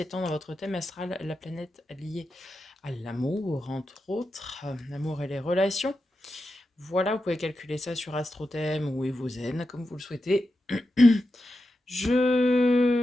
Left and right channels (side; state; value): both; normal; correlation 0.89